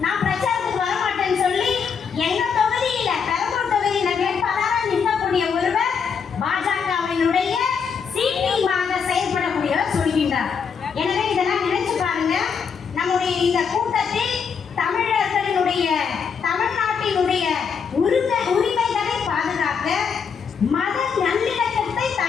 நான் பிரச்சாரத்துக்கு வரமாட்டேன்னு சொல்லி எங்க தொகுதியில பெரம்பூர் தொகுதியில வேட்பாளராக நிற்கக்கூடிய ஒருவர் பாஜகவினுடைய சீட்டிங்காக செயல்படக்கூடியவர் சொல்கின்றார். எனவே இதெல்லாம் நினைச்சு பாருங்க. நம்முடைய இந்த கூட்டத்தில் தமிழர்களினுடைய தமிழ்நாட்டினுடைய உரிமைகளை பாதுகாக்க, மத நல்லிணக்கத்தை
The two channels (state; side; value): quieter; right; 6.3 dB